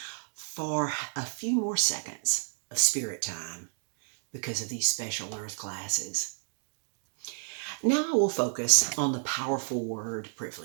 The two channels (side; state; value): left; silent; 55 dB below the other